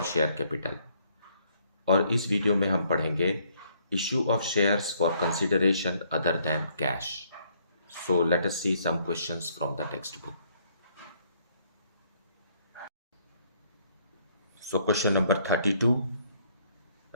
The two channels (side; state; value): both; inverted; correlation -0.67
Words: share capital. और इस वीडियो में हम पढ़ेंगे issue of shares for consideration other than cash. So let us see some questions from the text book. So question number 32.